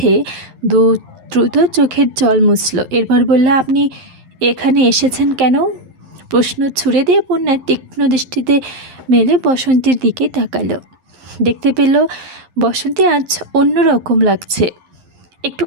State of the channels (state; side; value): late; left; 11 ms